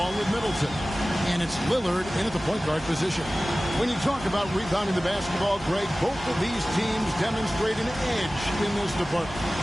with Middleton. And it's Lillard in at the point guard position. When you talk about rebounding the basketball, Greg, both of these teams demonstrate an edge in this department.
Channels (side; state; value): both; normal; correlation 0.97